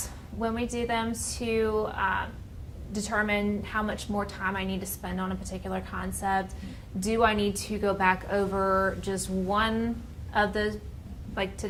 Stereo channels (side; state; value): both; identical; correlation 1.00